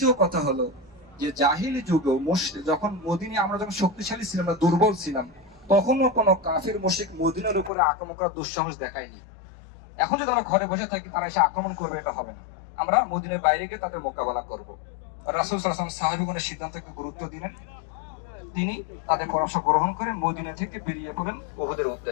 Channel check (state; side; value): drops out; right; at 7.7 s